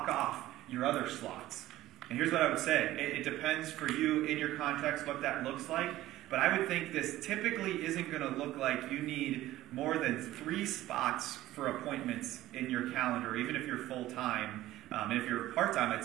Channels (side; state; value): left; quieter; 15.4 dB